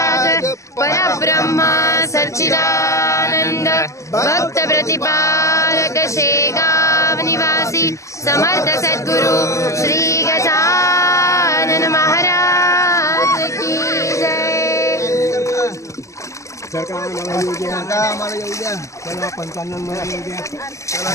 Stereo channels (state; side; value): late; right; 0.15 ms